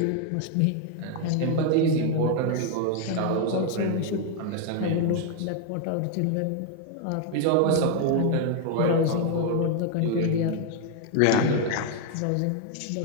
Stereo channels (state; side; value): different; both; correlation 0.00